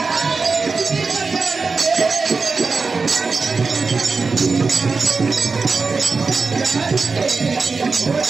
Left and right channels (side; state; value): left; quieter; 4.4 dB